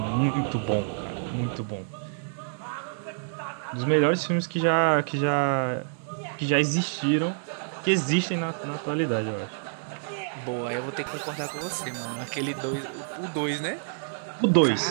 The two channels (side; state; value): left; silent; digital silence